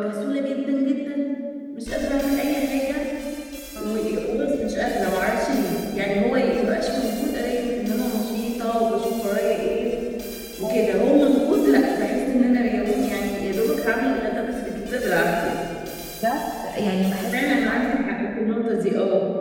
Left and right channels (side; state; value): both; identical; correlation 1.00